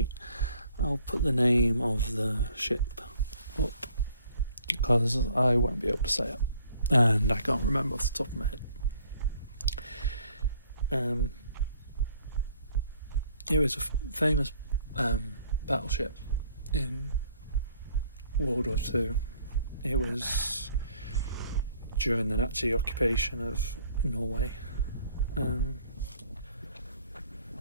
I'll put the name of the ship up, because I won't be able to say it, and I can't remember off the top of my head. It was a famous battleship in World War II. It was during the Nazi occupation of Norway.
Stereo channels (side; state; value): both; inverted; correlation -0.60